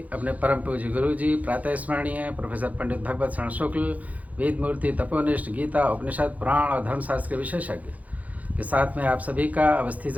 अपने परम पूज्य गुरु जी प्रातः स्मरणीय प्रोफेसर पंडित भगवत शरण शुक्ल, वेद मूर्ति, तपोनिष्ठ, गीता, उपनिषद, पुराण और धर्मशास्त्र के विशेषज्ञ के साथ में आप सभी का Awasthi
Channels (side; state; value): left; late; 0.074 ms